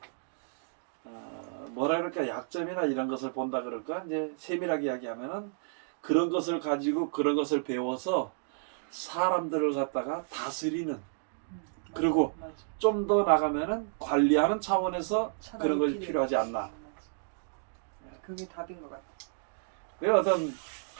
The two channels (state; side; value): silent; left; digital silence